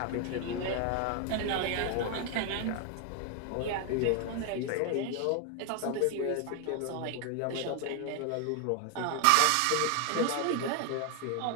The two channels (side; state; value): both; different; correlation 0.01